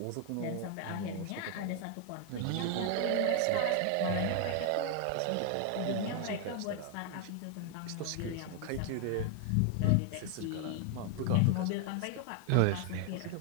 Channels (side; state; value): both; different; correlation 0.00